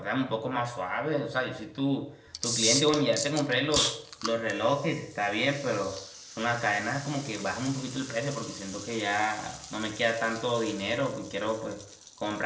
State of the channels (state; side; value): identical; both; correlation 1.00